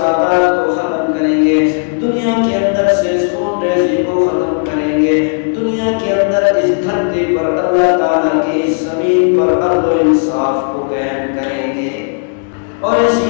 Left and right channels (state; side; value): silent; right; digital silence